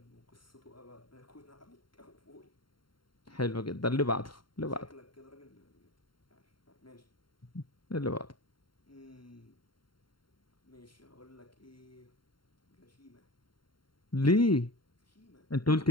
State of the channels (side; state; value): right; late; 0.73 ms